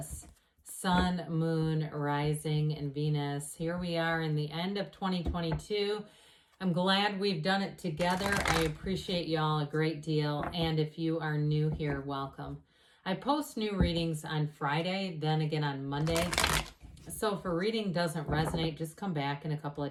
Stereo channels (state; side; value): identical; both; correlation 1.00